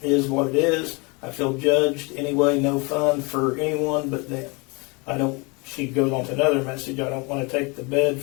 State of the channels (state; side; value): quieter; right; 29.2 dB